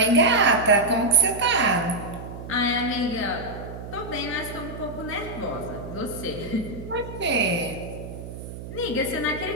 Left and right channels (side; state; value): right; noise; hum, 11 dB below the sound